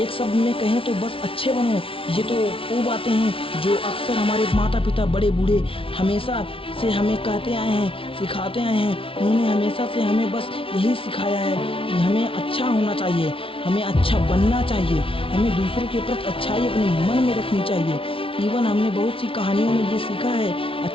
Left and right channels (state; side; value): late; right; 0.26 ms